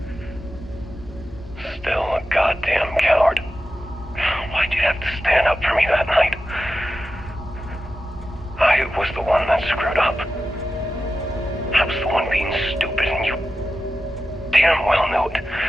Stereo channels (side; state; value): both; normal; correlation 0.92